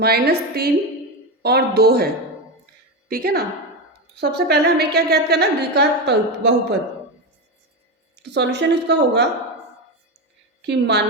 और 2 है। ठीक है ना। सबसे पहले हमें क्या ज्ञात करना है, द्विघात बहुपद। तो सॉल्यूशन इसका होगा कि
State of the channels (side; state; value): both; normal; correlation 0.15